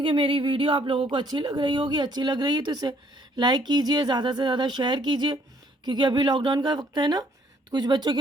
कि मेरी वीडियो आप लोगों को अच्छी लग रही होगी। अच्छी लग रही है तो इसे लाइक कीजिए, ज़्यादा से ज़्यादा शेयर कीजिए, क्योंकि अभी लॉकडाउन का वक्त है ना, तो कुछ बच्चों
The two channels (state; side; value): normal; both; correlation 0.64